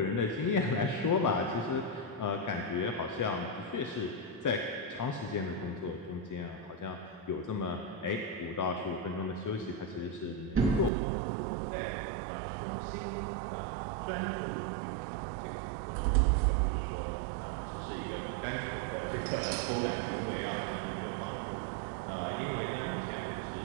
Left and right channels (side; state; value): left; drops out; at 10.9 s